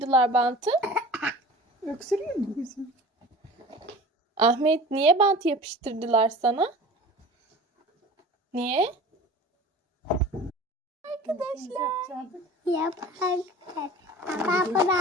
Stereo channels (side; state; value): both; normal; correlation 0.40